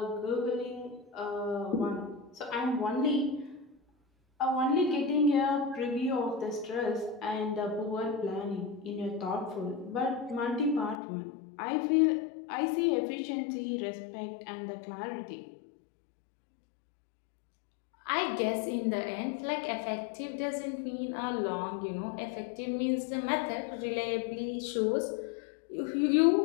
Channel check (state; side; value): drops out; right; at 11.0 s